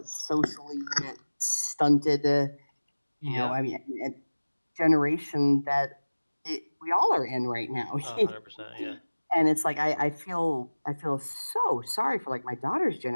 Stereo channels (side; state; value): both; inverted; correlation -1.00